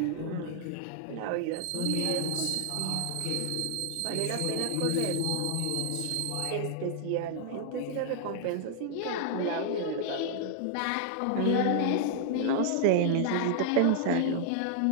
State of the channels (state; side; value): different; both; correlation -0.01